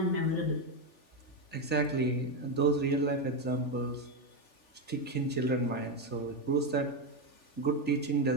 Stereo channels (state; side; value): late; right; 3.4 ms